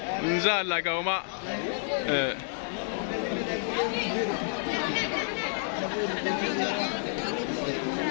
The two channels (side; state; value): right; silent; 58 dB below the other